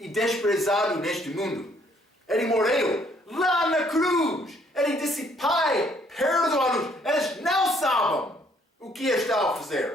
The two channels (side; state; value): both; normal; correlation 0.65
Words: desprezado neste mundo. Ele morreu lá na cruz. Ele disse, Pai, perdoa-nos. Eles não sabem o que está a